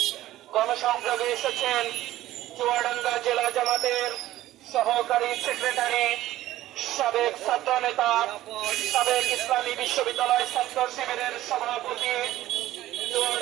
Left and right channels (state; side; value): quieter; left; 14.8 dB